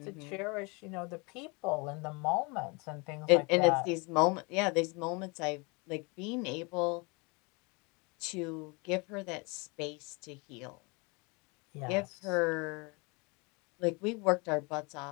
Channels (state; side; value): quieter; right; 29.3 dB